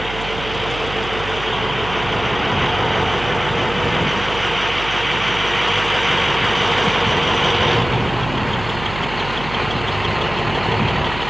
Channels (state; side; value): noise; right; hum, 12 dB below the sound